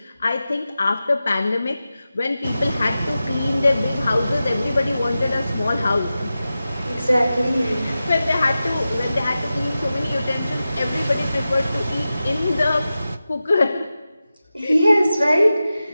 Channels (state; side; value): inverted; both; correlation -0.93